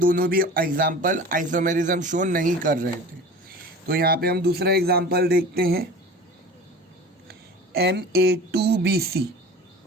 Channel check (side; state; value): both; normal; correlation 0.39